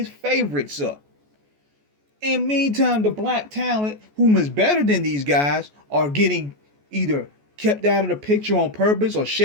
favorites up. In meantime, the black talent, whom is better than these guys, are getting either kept out of the picture on purpose or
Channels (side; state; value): left; late; 14 ms